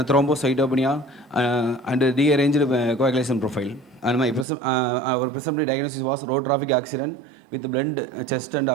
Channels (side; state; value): left; drops out; at 4.5 s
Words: and rearranged coagulation profile. And our presumptive diagnosis was road traffic accident with blunt chest and